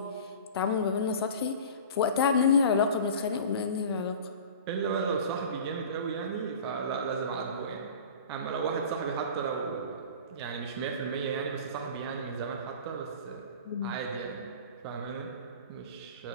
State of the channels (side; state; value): both; inverted; correlation -0.38